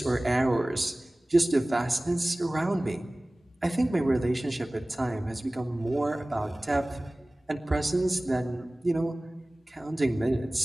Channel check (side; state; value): both; normal; correlation 0.98